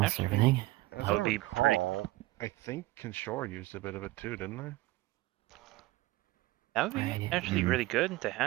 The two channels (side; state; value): left; quieter; 18.9 dB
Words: everything. As I recall, I think Kinshore used a bit of it too, didn't they? That would be actually really good to